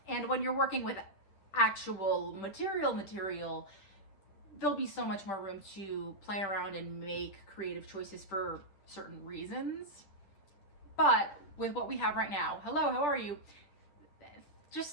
And when you're working with actual material, there'll be so much more room to play around and make creative choices for certain reasons. But with what we have right now, hello, how are you?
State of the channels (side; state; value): right; late; 10 ms